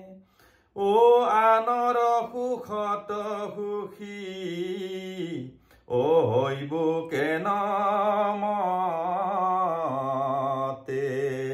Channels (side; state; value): both; identical; correlation 1.00